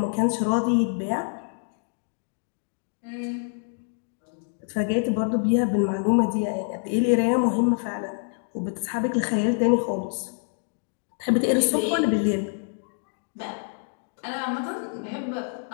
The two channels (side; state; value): right; silent; 57 dB below the other